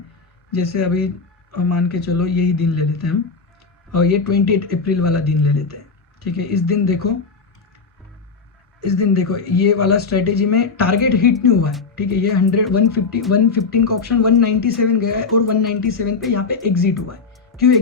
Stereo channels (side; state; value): right; quieter; 4.7 dB